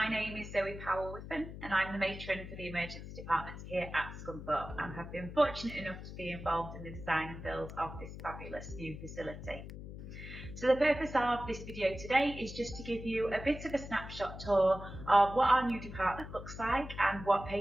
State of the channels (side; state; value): left; noise; hum, 11 dB below the sound